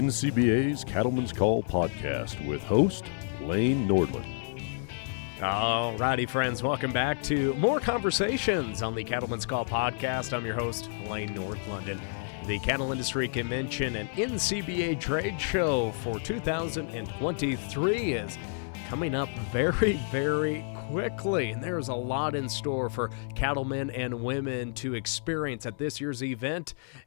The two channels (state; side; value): silent; right; 58 dB below the other